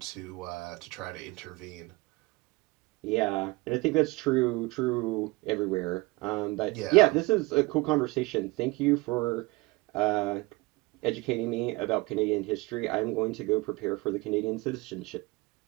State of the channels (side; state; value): left; quieter; 23.5 dB